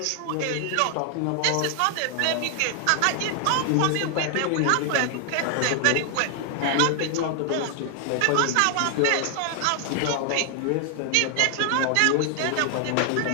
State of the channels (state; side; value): different; both; correlation 0.00